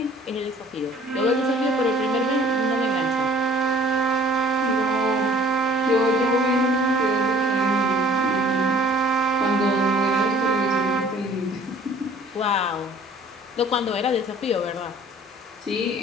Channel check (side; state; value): both; normal; correlation 0.52